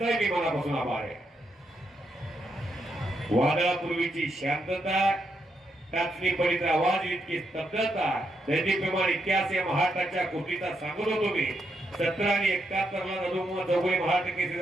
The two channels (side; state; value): both; normal; correlation 0.81